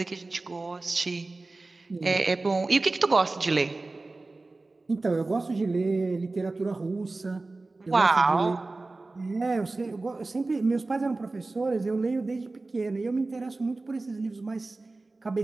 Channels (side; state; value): left; quieter; 3.3 dB